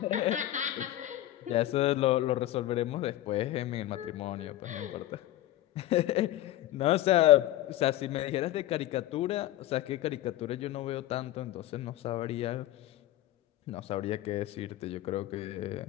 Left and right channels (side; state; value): right; quieter; 14.4 dB